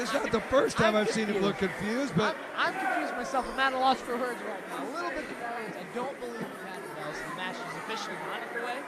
not the first time I've seen him look confused, but I'm confused myself. I'm at a loss for words right now. A little bit confused. I don't believe we've had the bells. The match is officially not underway.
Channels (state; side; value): identical; both; correlation 1.00